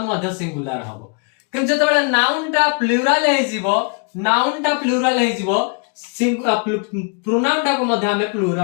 मध्य सिंगुलर हबो किंतु जतेबेले नाउन टा प्लुरल हे जिवो प्रोनाउन टा को मध्य हमें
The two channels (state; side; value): quieter; right; 37.1 dB